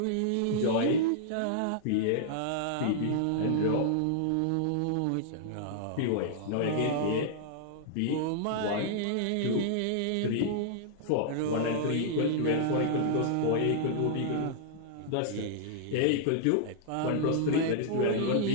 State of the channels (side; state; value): both; different; correlation -0.01